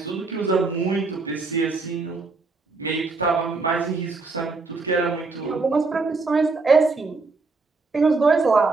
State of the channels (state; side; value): quieter; left; 3.9 dB